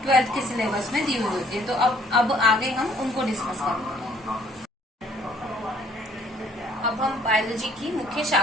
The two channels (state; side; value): normal; both; correlation 0.61